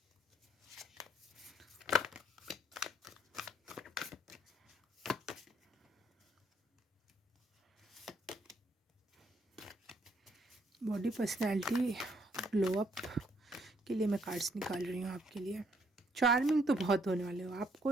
बॉडी पर्सनैलिटी ग्लो अप के लिए मैं कार्ड्स निकाल रही हूँ आपके लिए। चार्मिंग तो बहुत होने वाले हो,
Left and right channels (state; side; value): normal; both; correlation 0.69